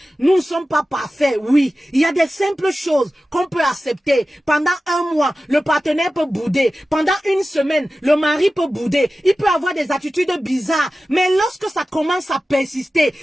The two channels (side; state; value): both; normal; correlation 0.95